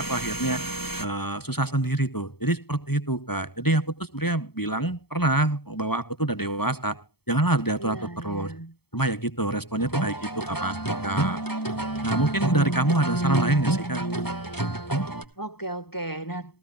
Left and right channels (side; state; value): right; late; 0.97 ms